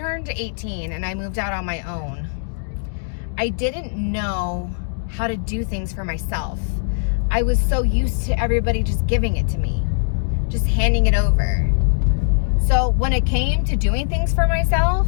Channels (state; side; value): silent; right; digital silence